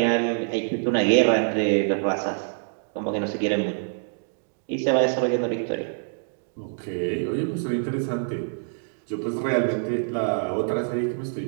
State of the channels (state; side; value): silent; left; digital silence